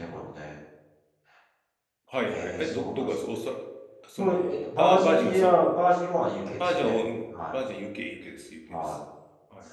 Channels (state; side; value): identical; both; correlation 1.00